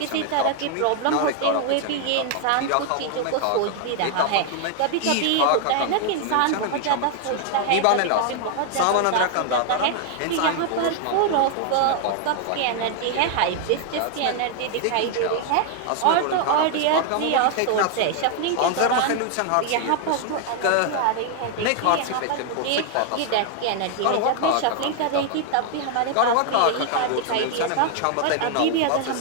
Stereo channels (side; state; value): both; different; correlation 0.00